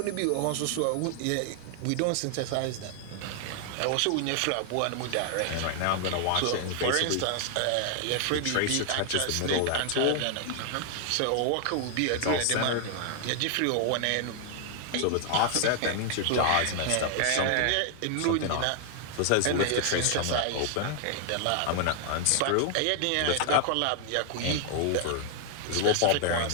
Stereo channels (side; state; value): both; different; correlation 0.00